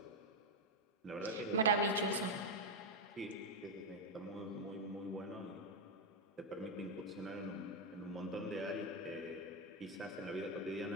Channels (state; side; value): normal; both; correlation 0.03